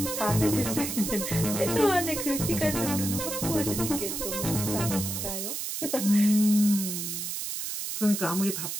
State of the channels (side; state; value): right; noise; hiss, 4 dB below the sound